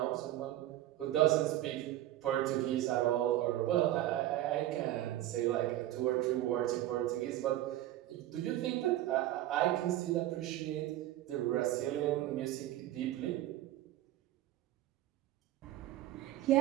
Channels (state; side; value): quieter; left; 14.2 dB